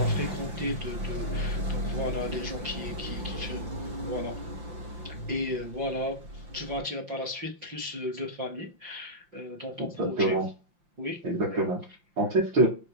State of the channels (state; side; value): late; left; 5.7 ms